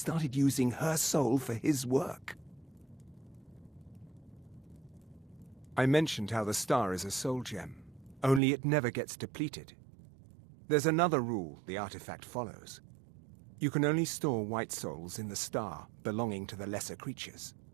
using her soul for his work. I mentioned how the star is a soul gem, only it never gets depleted. There's another rule the artifact follows. You can only store white souls in the star belonging to the lesser creatures.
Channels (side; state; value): left; drops out; at 8.4 s